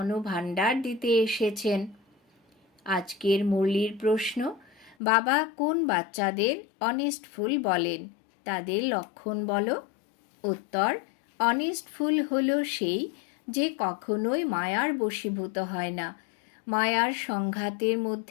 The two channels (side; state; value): right; drops out; at 5.0 s